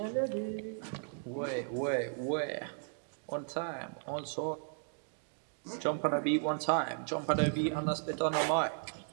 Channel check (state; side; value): silent; left; digital silence